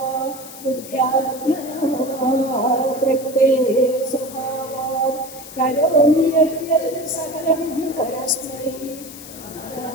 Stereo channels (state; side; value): noise; left; hiss, 15 dB below the sound